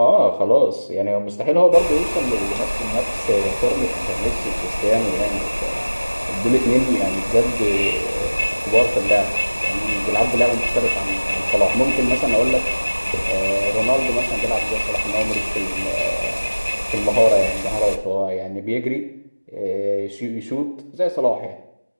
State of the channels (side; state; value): both; inverted; correlation -1.00